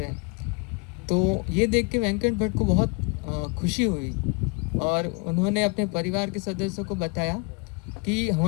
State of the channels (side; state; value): right; quieter; 31.5 dB